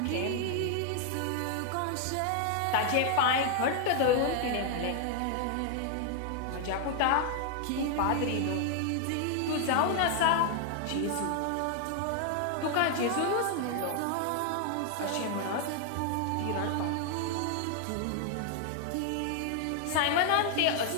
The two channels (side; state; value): both; different; correlation 0.00